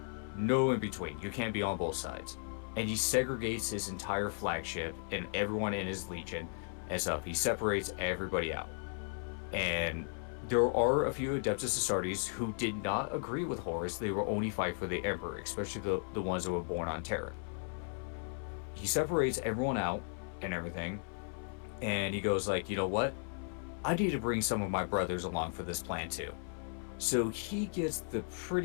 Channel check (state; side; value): silent; right; 54 dB below the other